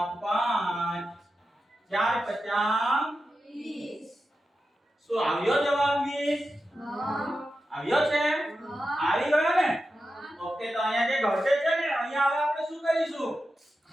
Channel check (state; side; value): normal; both; correlation 0.91